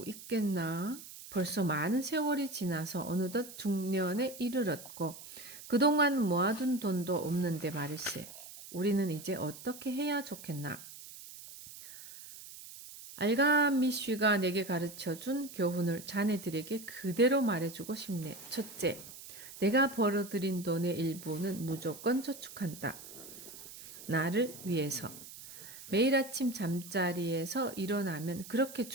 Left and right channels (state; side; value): noise; right; hiss, 15 dB below the sound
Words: 있겠나? 벌써 많은 세월이 지나서 어느덧 중년에 이르렀고 그동안 모아둔 돈도 없는데 말일세. 우리는 이제 어떻게 해야 좋겠나? 알가미쉬가 내게 가르쳐준 교훈을 자네들에게 그대로 말해주고 싶네. 첫째, 내가 벌어들인 돈의 일부는 무조건 저축한다. 나를 위해서. 매일 아침 잠자리에서 일어나면 그렇게